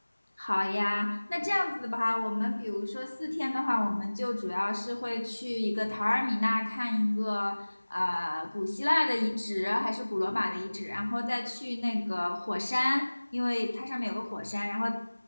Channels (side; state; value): both; inverted; correlation -1.00